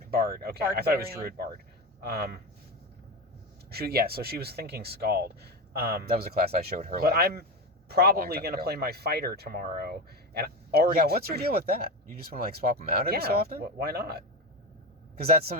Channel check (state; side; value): normal; both; correlation 0.19